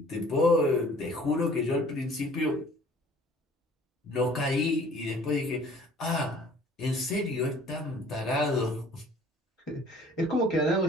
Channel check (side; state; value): both; normal; correlation 0.52